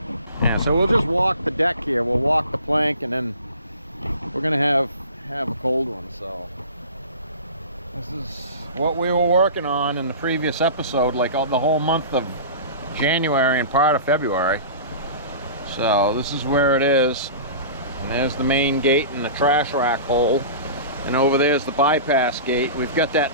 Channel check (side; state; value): both; inverted; correlation -0.37